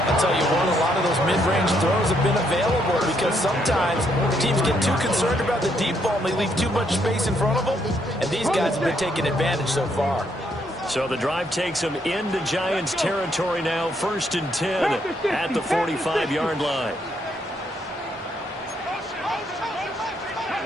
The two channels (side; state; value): both; normal; correlation 0.73